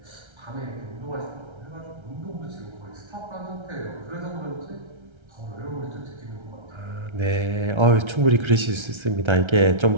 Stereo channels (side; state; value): left; late; 1.3 ms